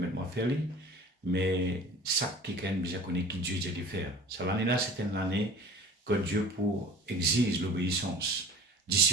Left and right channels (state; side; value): normal; both; correlation 0.43